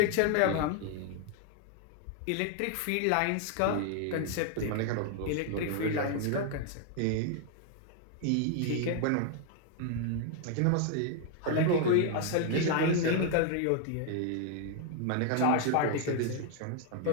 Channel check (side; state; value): both; different; correlation 0.00